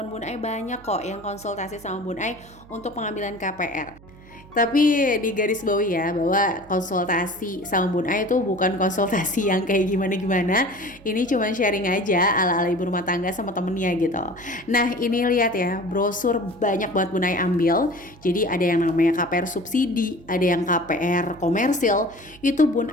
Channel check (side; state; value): right; noise; hum, 23 dB below the sound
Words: Bun Ai banyak kok yang konsultasi sama Bun Ai untuk pengambilan KPR. Tapi di garis bawahi ya bahwa konsultasi sama Bun Ai itu bukan konsultasi yang kayak gimana-gimana. Ini cuma sharing aja ala-ala ibu rumah tangga sama temennya gitu. Nah ini lihat ya, brosur banyak banget Bun Ai ambil. Jadi ada yang namanya KPR subsidi, ada yang KPR komersil. Itu Bun